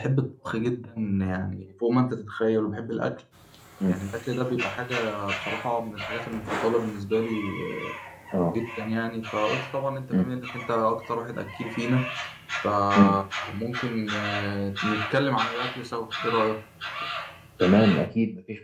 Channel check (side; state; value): both; identical; correlation 1.00